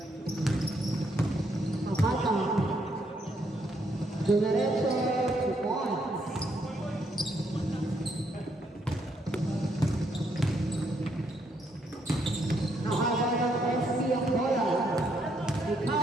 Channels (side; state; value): both; normal; correlation 0.74